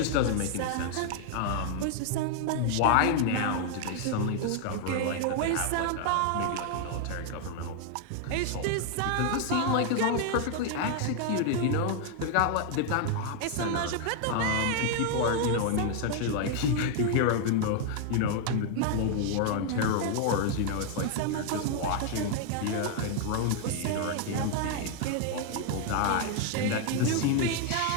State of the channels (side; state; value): both; different; correlation 0.00